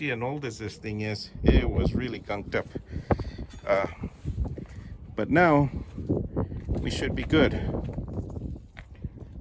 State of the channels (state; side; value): identical; both; correlation 1.00